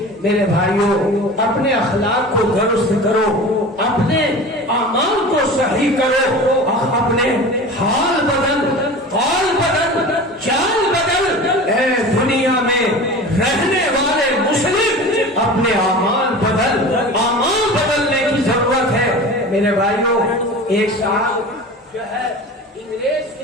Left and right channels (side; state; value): both; normal; correlation 0.35